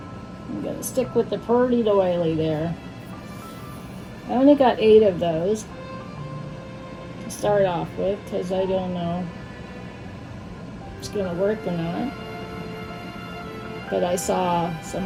I'm gonna stick with the pretty doily there. I only got 8 of those to start off with because I don't know if it's gonna work or not. But I saw some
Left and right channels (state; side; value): identical; both; correlation 1.00